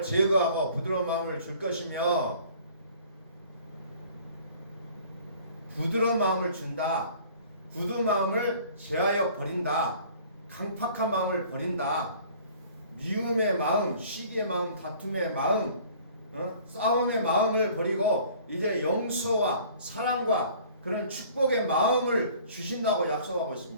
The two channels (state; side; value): inverted; both; correlation -0.51